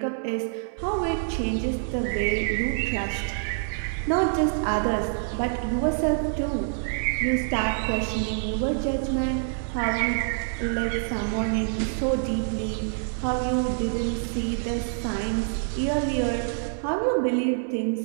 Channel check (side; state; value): left; silent; 61 dB below the other